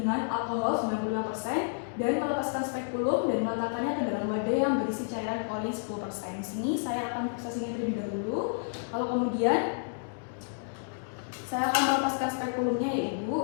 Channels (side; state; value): right; silent; digital silence